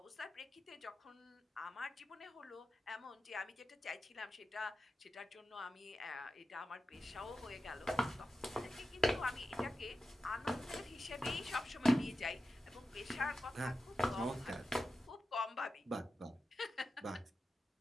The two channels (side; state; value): both; normal; correlation 0.92